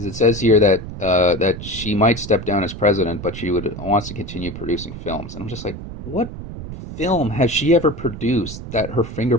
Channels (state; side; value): noise; right; rumble, 10 dB below the sound